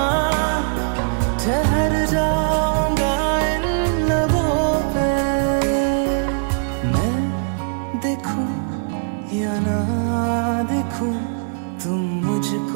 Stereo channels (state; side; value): silent; left; 65 dB below the other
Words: ठहर जाऊंगा इन लबों पे। मैं देखूं या ना देखूं, तुम